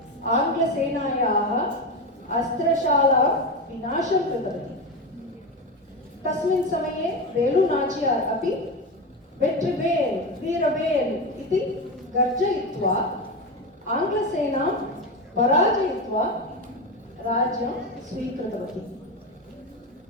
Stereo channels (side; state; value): both; normal; correlation 0.18